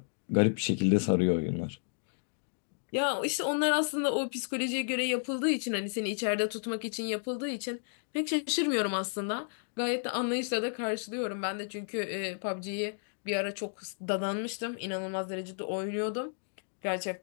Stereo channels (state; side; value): silent; right; digital silence